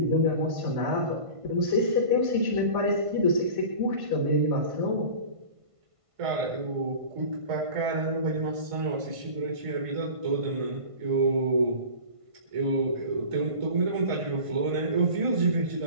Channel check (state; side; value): late; left; 1.5 ms